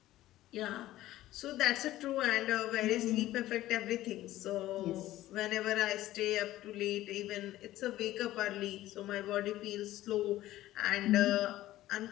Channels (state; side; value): quieter; right; 15.1 dB